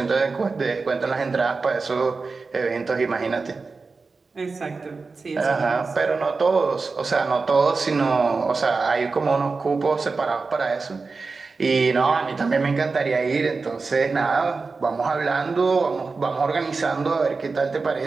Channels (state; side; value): quieter; left; 4.2 dB